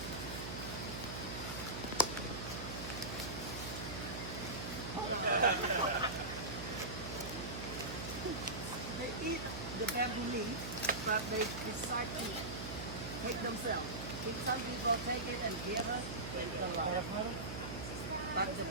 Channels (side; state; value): right; noise; hum, 6 dB below the sound